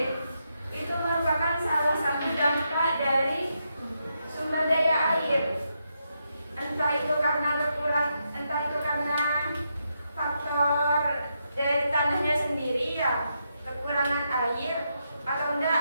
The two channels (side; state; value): both; inverted; correlation -0.82